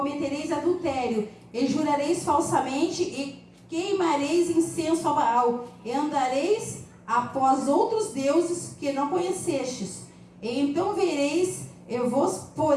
adultério, e jurareis falsamente e queimareis incenso a Baal, e andareis após outros deuses que não conhecestes. E então vereis, eu vos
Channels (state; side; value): identical; both; correlation 1.00